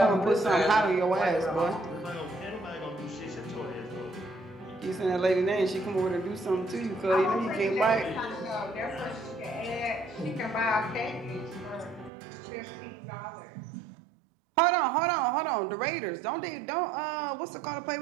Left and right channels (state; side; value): drops out; left; at 12.1 s